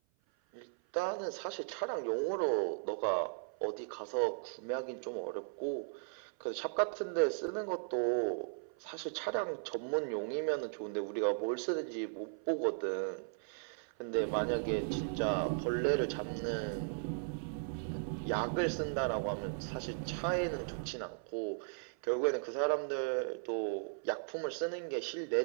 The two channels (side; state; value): left; silent; 53 dB below the other